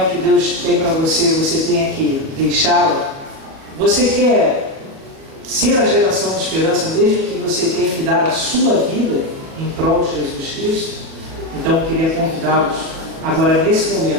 o que Deus tem para você, você tenha que deixá-la. Você quer ser a geração de esperança, mesmo que você tenha que dar a sua vida em prol de Jesus Cristo? Então eu queria convidá-los, agora nesse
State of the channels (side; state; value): left; late; 37 ms